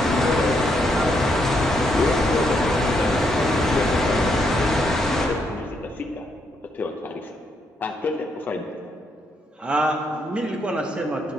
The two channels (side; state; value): both; normal; correlation 0.76